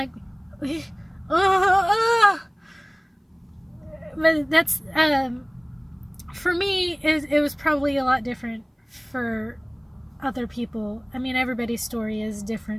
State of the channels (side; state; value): both; identical; correlation 1.00